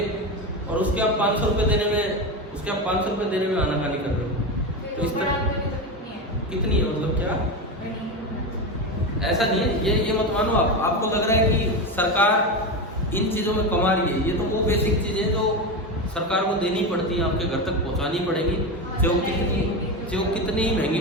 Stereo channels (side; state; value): both; normal; correlation 0.18